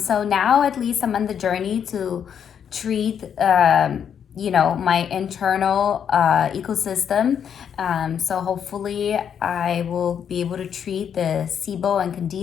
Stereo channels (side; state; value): right; quieter; 8.2 dB